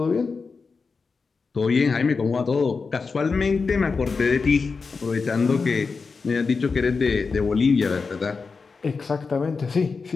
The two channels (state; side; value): quieter; right; 4.7 dB